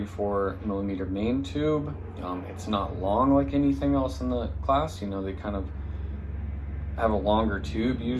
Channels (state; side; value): identical; both; correlation 1.00